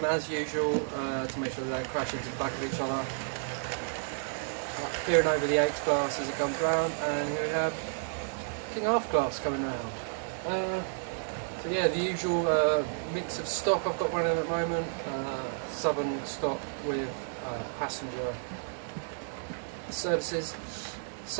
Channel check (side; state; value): left; silent; digital silence